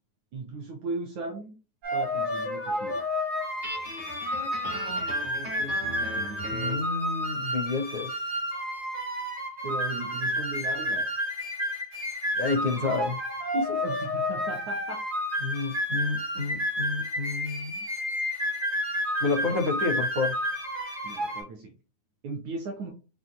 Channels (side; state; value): left; late; 9.5 ms